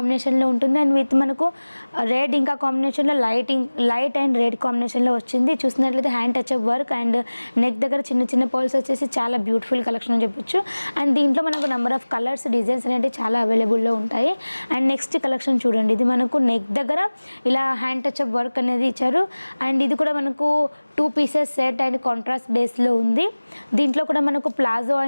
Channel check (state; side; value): inverted; both; correlation -1.00